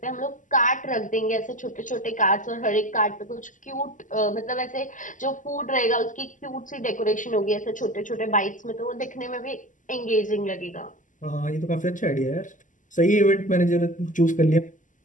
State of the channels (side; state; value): right; late; 0.37 ms